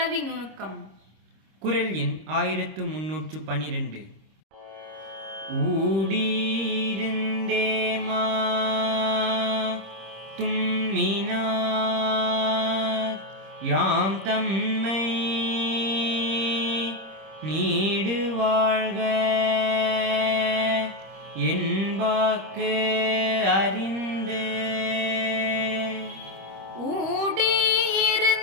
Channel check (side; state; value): left; late; 26 ms